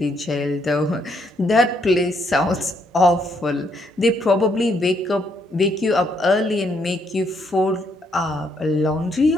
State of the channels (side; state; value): both; normal; correlation 0.73